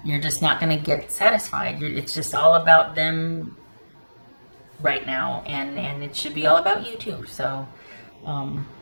you're just not going to get satisfied. It's just all about them right now, and it should be all about you too. So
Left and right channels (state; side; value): inverted; both; correlation -1.00